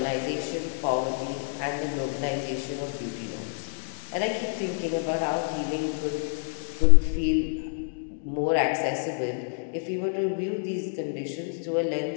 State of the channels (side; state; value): right; silent; digital silence